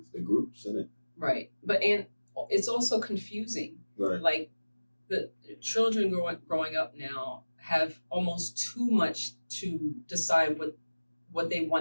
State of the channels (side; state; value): both; inverted; correlation -1.00